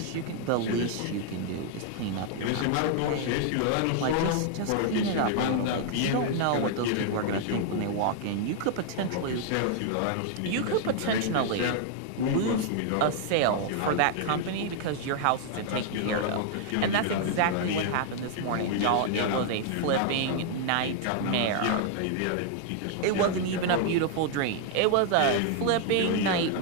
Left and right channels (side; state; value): both; different; correlation 0.00